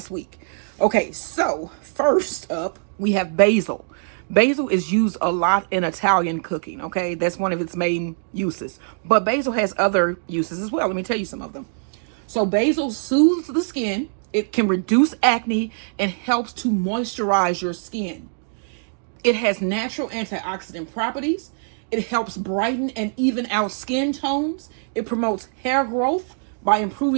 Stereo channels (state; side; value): silent; left; digital silence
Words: week. Okay, so first up we have basil. Basil is used a lot in Italian cooking, okay? That's one of its main uses. But basil has other uses as well. Let me tell you some of them. So basil soothes the skin. It can reduce acne and helps to moisturize your skin. It has natural antioxidant properties. It helps brighten and even out skin tones. It promotes hair growth by